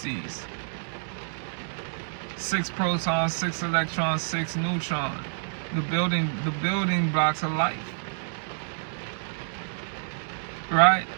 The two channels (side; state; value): left; silent; digital silence